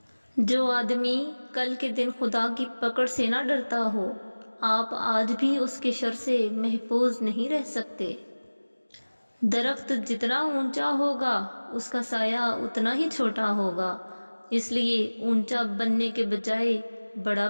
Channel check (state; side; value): inverted; both; correlation -1.00